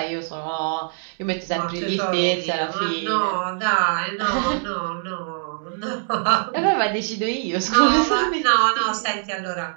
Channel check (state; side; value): silent; left; digital silence